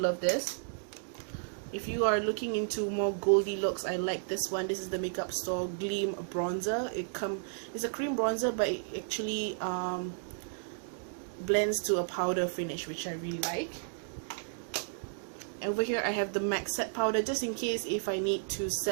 this. If you are looking into more goldy looks, I like this one. This is the Makeup Store Gleam Bronzer. It's a cream bronzer, but it actually blends to a powder finish, which I really like. Over here I have the MAC set powder, just in case if I need to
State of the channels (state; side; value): silent; left; digital silence